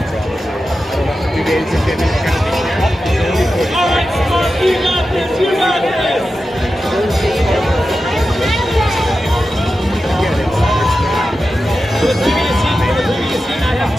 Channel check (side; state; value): both; normal; correlation 0.92